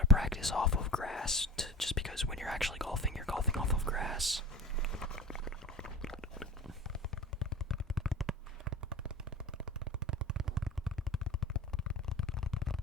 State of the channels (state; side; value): normal; both; correlation 0.34